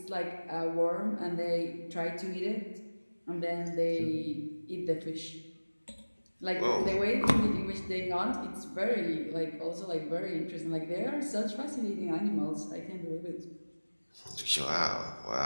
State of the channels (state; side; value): inverted; both; correlation -1.00